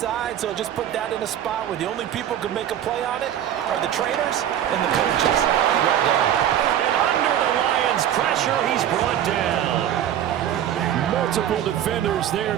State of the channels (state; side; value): quieter; left; 10.7 dB